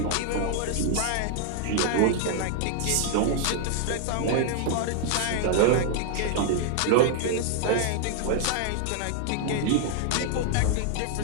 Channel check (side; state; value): both; different; correlation 0.00